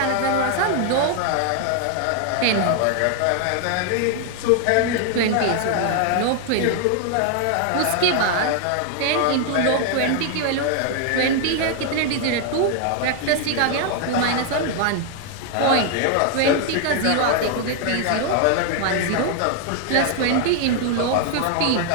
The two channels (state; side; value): different; both; correlation 0.00